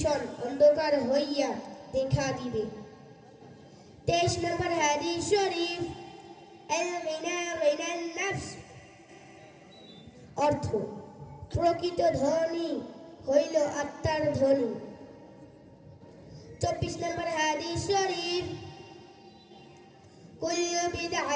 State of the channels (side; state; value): both; identical; correlation 1.00